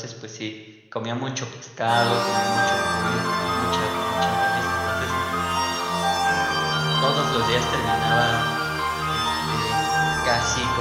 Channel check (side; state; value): both; identical; correlation 1.00